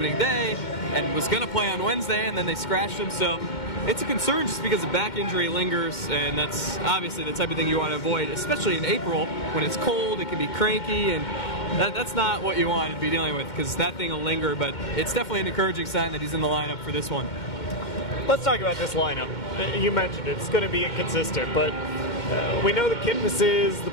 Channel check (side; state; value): right; late; 2.1 ms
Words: day and was going to play on Wednesday, and then they scratched him. So it's a concern just because the back injury lingers, and that's obviously the type of thing you want to avoid, especially in April when it's cold, it can be cranky, and that's not what you want to be dealing with, because that thing will linger. But it's definitely an encouraging sign that he's in the lineup for this one. Let's talk about this lineup. You mentioned it's going to be inconsistent, but we know the Kipnis's, the